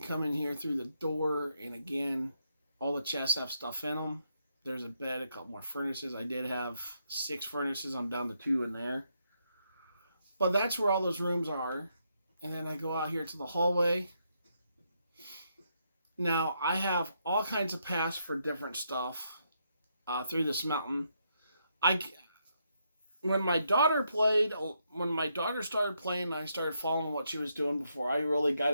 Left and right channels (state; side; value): inverted; both; correlation -0.78